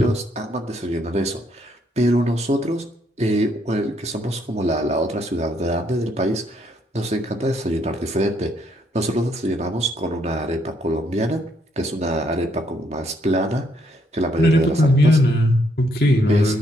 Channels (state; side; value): normal; both; correlation 0.72